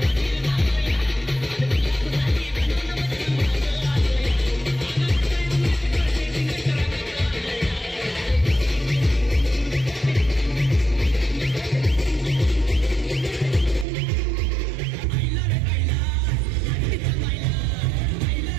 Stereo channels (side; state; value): left; drops out; at 13.9 s